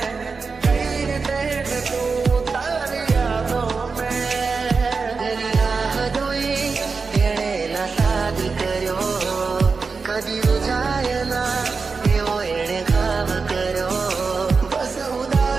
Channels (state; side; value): quieter; left; 4.7 dB